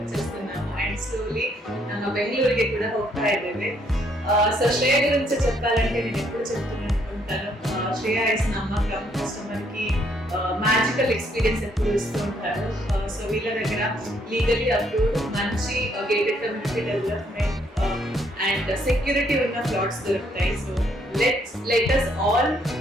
వచ్చేస్తున్నాము అండ్ స్లోలీ బెంగళూరుకి కూడా ಹೋಗ್ತಾ ಇದ್ದೇವೆ. సో శ్రేయ గురించి చెప్పాలంటే నేను ఎప్పుడు చెప్తున్నాను అనుకుంటాను, శ్రేయ ఇస్ నమ్మకం, కస్టమర్ కి మ్యాజికల్ ఎక్స్పీరియన్స్ ఎప్పుడు ఇస్తూ ఉంటారు. సో వీళ్ళ దగ్గర లీగలీ అప్రూవ్డ్ మంచి gated community development and security ఉన్న ప్లాట్స్ దొరుకుతాయి. So let us all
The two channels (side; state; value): both; normal; correlation 0.69